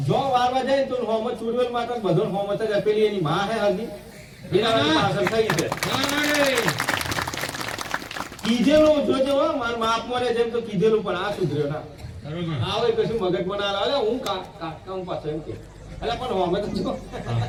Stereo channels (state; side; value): identical; both; correlation 1.00